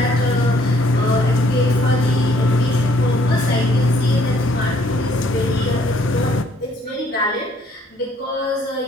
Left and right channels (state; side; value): normal; both; correlation 0.64